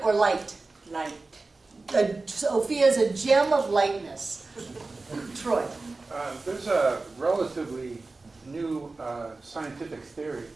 or light? Light. Sophia is a gem of lightness. Troy. There's a relatively new scientific theory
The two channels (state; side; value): quieter; left; 3.5 dB